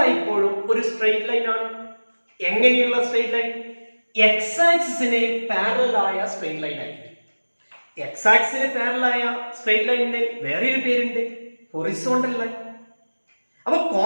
ഒരു സ്ട്രെയിറ്റ് ലൈൻ ആണ്. എങ്ങനെയുള്ള സ്ട്രെയിറ്റ് ലൈൻ? എക്സ് ആക്സിസിന് പാരലൽ ആയ സ്ട്രെയിറ്റ് ലൈൻ ആയിരിക്കും. എക്സ് ആക്സിസിന് പാരലൽ ആയ സ്ട്രെയിറ്റ് ലൈനിന് വേറൊരു പേരുണ്ട്, ഹൊറിസോണ്ടൽ ലൈൻ. അപ്പൊ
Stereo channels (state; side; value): inverted; both; correlation -1.00